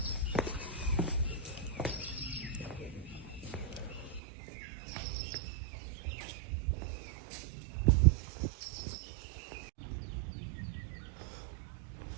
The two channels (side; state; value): left; drops out; at 4.2 s